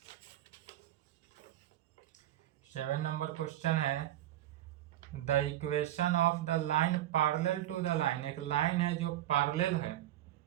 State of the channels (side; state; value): left; quieter; 13.6 dB